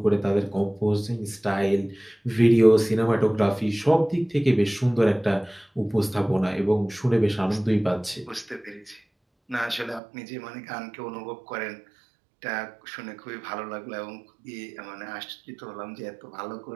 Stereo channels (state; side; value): drops out; left; at 10.0 s